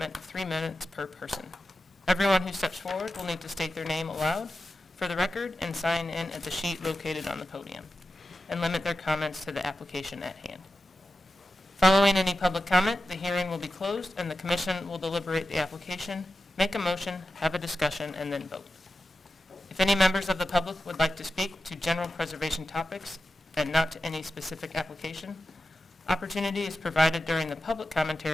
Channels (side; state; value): both; normal; correlation 0.92